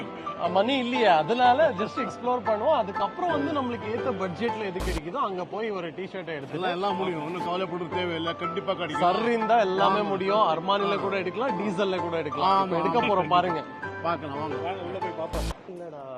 மணி இல்லையா, அதனால ஜஸ்ட் எக்ஸ்ப்ளோர் பண்ணுவோம். அதுக்கப்புறம் வந்து நம்மளுக்கு ஏத்த பட்ஜெட்ல எது கிடைக்குதோ அங்க போய் ஒரு டிஷர்ட் எடுத்துலாம் எல்லாம் முடியும். ஒன்னும் கவலைப்பட தேவையில்லை, கண்டிப்பா கிடைக்கும். சர் இருந்தா எல்லாமே முடியும். அர்மானில கூட எடுக்கலாம், டீசல்ல கூட எடுக்கலாம். எடுக்க போறோம் பாருங்க, பாக்கலாம். வாங்க உள்ள போய் பாப்போம். இல்லடா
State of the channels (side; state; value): both; identical; correlation 1.00